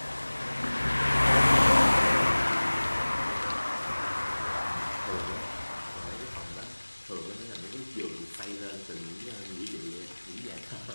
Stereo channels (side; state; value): both; inverted; correlation -1.00